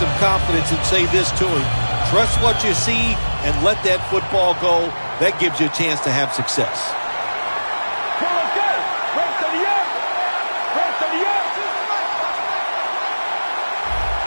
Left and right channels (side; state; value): both; inverted; correlation -1.00